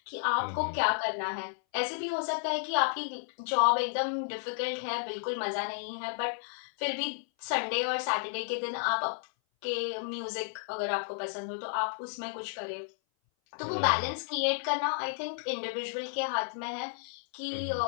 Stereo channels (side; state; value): right; silent; 56 dB below the other